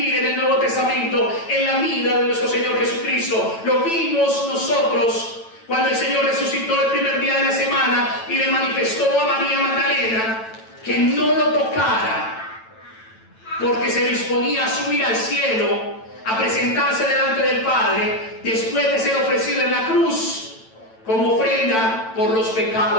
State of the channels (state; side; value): late; right; 9.0 ms